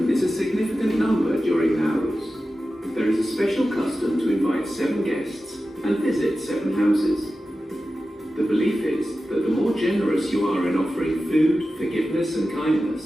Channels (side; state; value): both; normal; correlation 0.93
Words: is a significant number during Nauruz. There is a special custom to invite 7 guests and visit 7 houses. The belief is that the more generous you are in offering food, forgiveness and